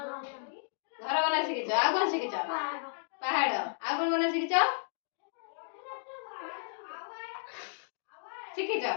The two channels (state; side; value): silent; right; digital silence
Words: घर बना शिखिछ आ कोन शिखिछ पहाड़ आ कोन बना शिखिछ शिखिछ